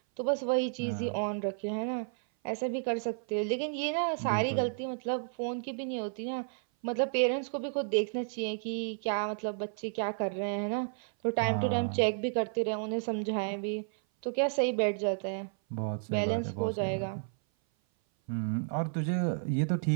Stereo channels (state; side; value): silent; left; 56 dB below the other